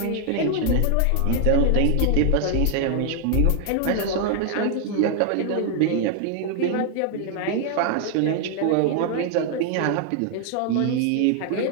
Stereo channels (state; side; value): different; both; correlation 0.00